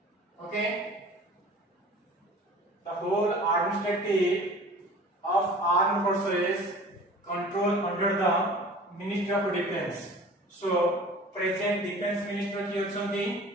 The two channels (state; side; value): normal; both; correlation 0.44